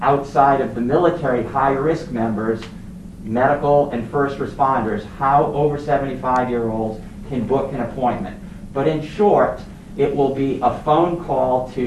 outside of the military high-risk members, medical and first responders, how over 75-year-olds can book an appointment. But in short, it will be a phone call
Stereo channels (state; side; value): identical; both; correlation 1.00